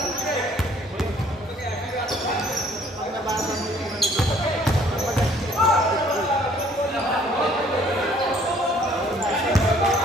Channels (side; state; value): both; normal; correlation 0.59